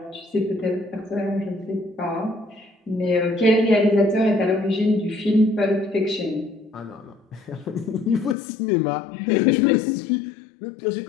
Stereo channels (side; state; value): right; drops out; at 8.3 s